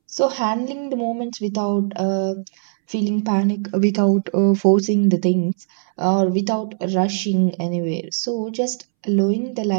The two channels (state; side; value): silent; left; 66 dB below the other